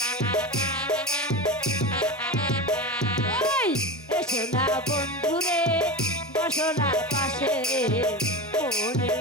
ওই এসো না বন্ধু রে বসনা পাশে রে, মনের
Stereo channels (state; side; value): normal; both; correlation 0.24